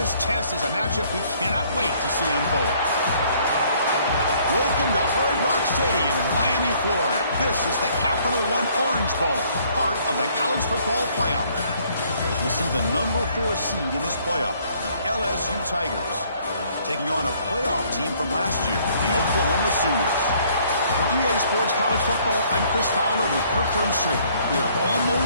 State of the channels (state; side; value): inverted; both; correlation -0.62